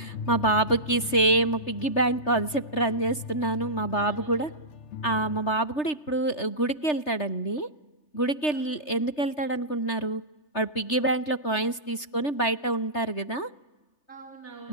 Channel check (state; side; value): late; right; 3.3 ms